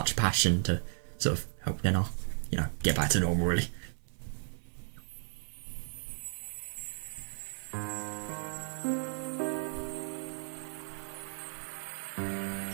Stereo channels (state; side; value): silent; left; 55 dB below the other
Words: passion to sort of help Nena, get back to normal, really.